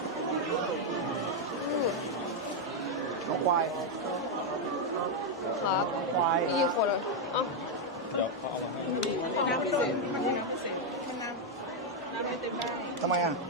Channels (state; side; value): normal; both; correlation 0.01